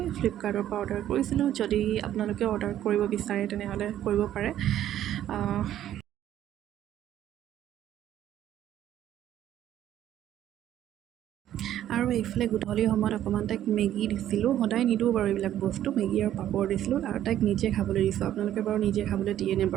ফ্লিপকাৰ্টৰ পৰা অৰ্ডাৰ কৰিছিলোঁ। যদি আপোনালোকে অৰ্ডাৰ কৰিব বিচাৰে তেনেহ'লে কৰিব পাৰে। আৰু এইফালে গধূলি সময়ত অকণমান তাইক মেগী দিছিলোঁ, সদায় নিদিওঁ বাৰু এইবিলাক বস্তু, মেগী আৰু পাপৰ দিছিলোঁ আৰু তাইক নিজে খাবলৈ দিছোঁ। আপোনালোকে বাৰু নিজে খাবলৈ দিয়েনে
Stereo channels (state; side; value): quieter; left; 11.8 dB